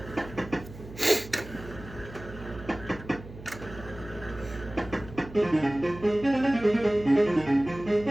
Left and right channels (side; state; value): right; noise; hum, 15 dB below the sound